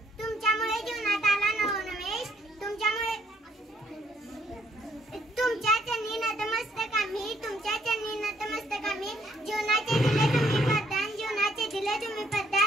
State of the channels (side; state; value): both; normal; correlation 0.68